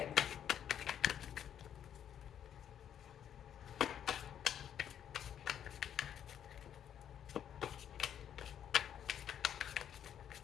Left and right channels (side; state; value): right; quieter; 9.5 dB